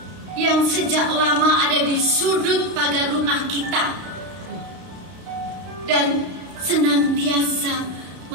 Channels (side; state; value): left; late; 32 ms